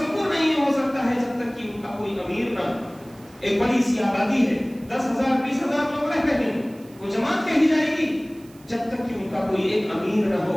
نہیں ہو سکتا ہے جب تک کہ ان کا کوئی امیر نہ۔ ایک بڑی سی آبادی ہے، 10,000 20,000 لوگ رہ رہے ہیں، وہ جماعت کہی جائے گی، جب تک کہ ان کا کوئی ایک امیر نہ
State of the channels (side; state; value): right; noise; hiss, 27 dB below the sound